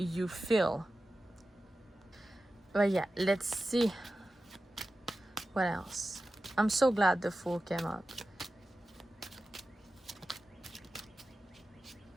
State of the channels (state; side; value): normal; both; correlation 0.94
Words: feel. But yeah, let's see what else. I'm so glad the Fool came up.